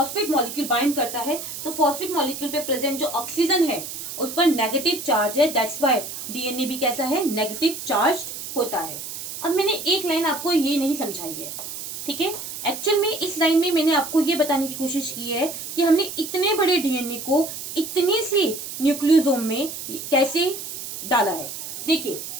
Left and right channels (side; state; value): right; noise; hiss, 8 dB below the sound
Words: मॉलिक्यूल बाइंड करता है तो फॉस्फेट मॉलिक्यूल पे प्रेजेंट जो ऑक्सीजन है उस पर नेगेटिव चार्ज है, दैट्स व्हाई डीएनए भी कैसा है, नेगेटिव चार्ज होता है। अब मैंने एक लाइन आपको ये नहीं समझाई है, ठीक है, एक्चुअल में इस लाइन में मैंने आपको ये बताने की कोशिश की है कि हमने इतने बड़े डीएनए को इतने से न्यूक्लियोसोम में कैसे डाला है। देखिए